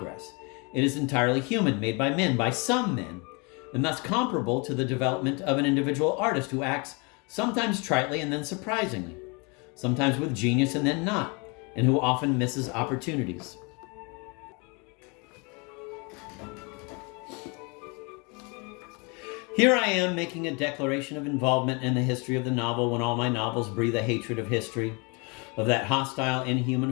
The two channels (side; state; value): right; quieter; 31.0 dB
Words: It is entirely human, made by men, by some men, and thus comparable to the development of an individual artist who acts sometimes tritely and then surprisingly, sometimes with genius and then not, and who often misses opportunities. Here I am making a declaration of involvement in the history of the novel when all my novels breathe a hatred of history, of that hostile,